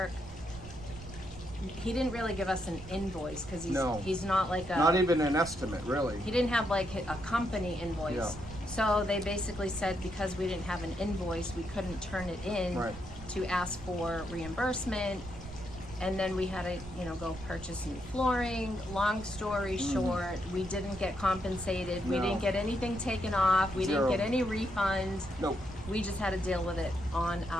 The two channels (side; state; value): right; noise; rumble, 15 dB below the sound